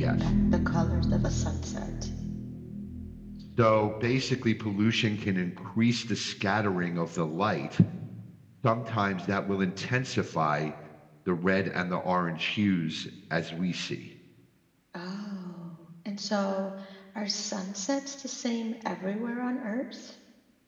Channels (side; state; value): both; identical; correlation 1.00